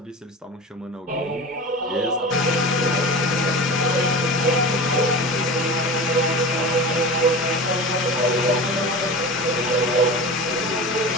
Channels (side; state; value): both; normal; correlation 0.31